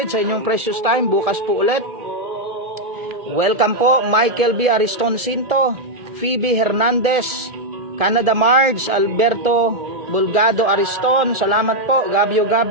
sa inyong precious time. Bukas po ulit. Welcome po Michael B. Ariston Cinto, Phoebe Hernandez, Canada Marge, Alberto Bulgado Ariston. Salamat po. Gabio,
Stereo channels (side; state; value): left; late; 1.7 ms